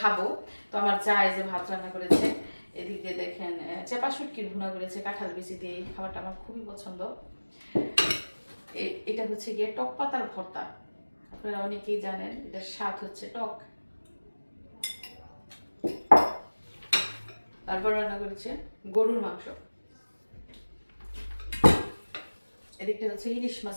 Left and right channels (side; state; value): both; inverted; correlation -1.00